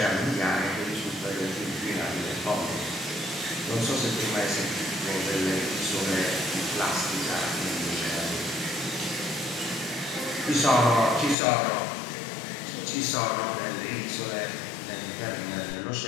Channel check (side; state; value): right; drops out; at 11.4 s